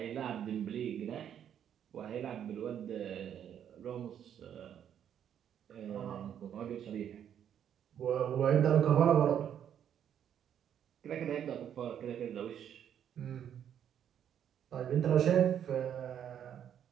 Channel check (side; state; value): left; quieter; 9.3 dB